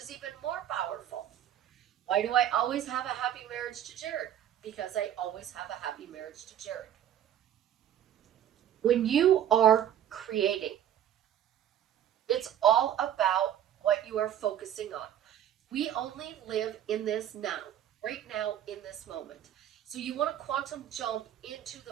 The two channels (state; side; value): quieter; left; 10.7 dB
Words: even more powerful. Why do I always have a happy marriage to Jared? Because I always have a happy marriage to Jared. When you are creating, it's all about what you are focusing on. We only live in this now, right now in this moment. So you want to quantum jump into